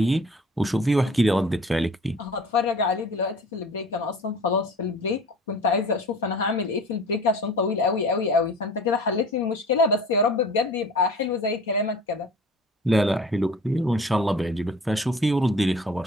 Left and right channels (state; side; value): normal; both; correlation 0.44